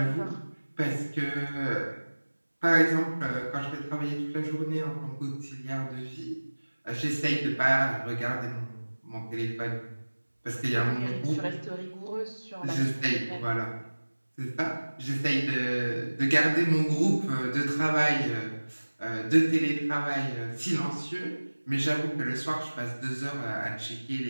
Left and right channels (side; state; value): both; inverted; correlation -1.00